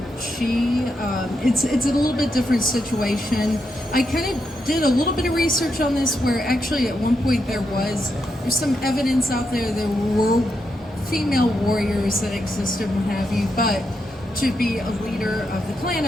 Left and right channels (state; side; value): normal; both; correlation 0.83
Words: she, it's a little bit different situation. I kind of did a little bit of research on this, where actually at one point there's some evidence out there were female warriors that existed, what have you, but to be a leader of the clan,